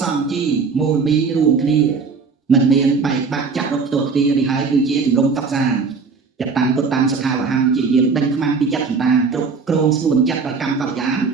សង្ជីមូលមីរួមគ្នាមិនមានបែកបាក់ចាក់រកផ្ទាល់គ្នានេះហើយគឺជាជំរំតបសានចតាំងពុតតាំងសខាវហੰជាយាមដេញខ្មាំងពីចិត្តសន្តានគ្រប់គ្រងស្នួនចិត្តដល់កម្មបរិយាន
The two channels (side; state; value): left; quieter; 4.9 dB